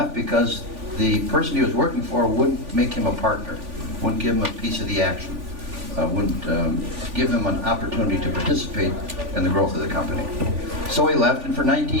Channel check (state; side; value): late; left; 3.5 ms